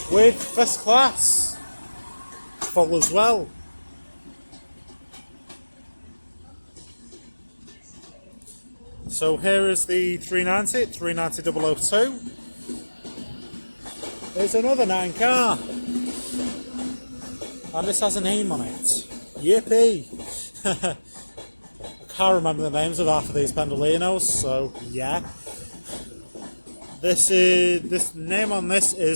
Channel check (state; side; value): inverted; both; correlation -1.00